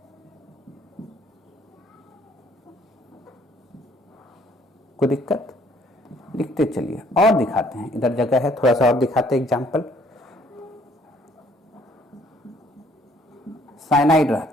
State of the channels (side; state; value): both; normal; correlation 0.62